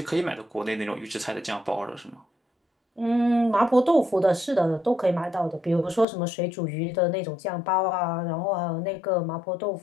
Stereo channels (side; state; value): right; drops out; at 6.1 s